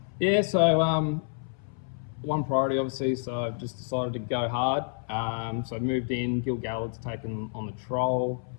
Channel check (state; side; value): silent; right; 59 dB below the other